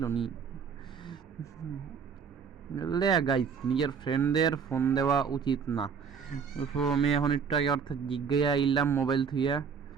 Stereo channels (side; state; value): left; quieter; 6.4 dB